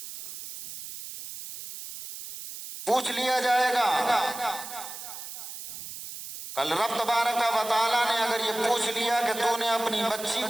کل رب تبارک و تعالیٰ نے اگر یہ پوچھ لیا کہ تو نے اپنی بچی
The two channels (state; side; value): noise; right; hiss, 10 dB below the sound